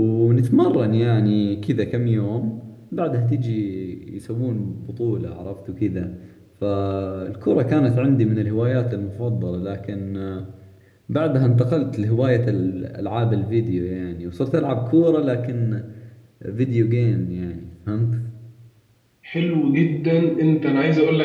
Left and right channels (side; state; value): both; identical; correlation 1.00